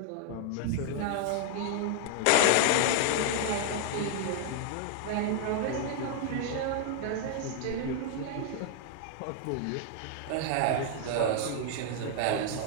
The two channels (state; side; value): different; both; correlation 0.00